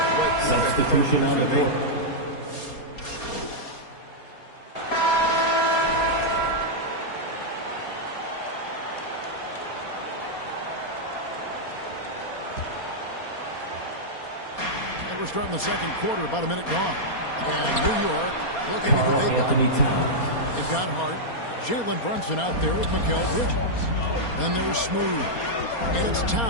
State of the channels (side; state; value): right; late; 4.3 ms